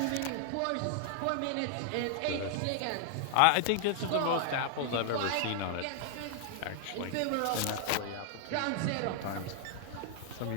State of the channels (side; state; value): both; different; correlation 0.00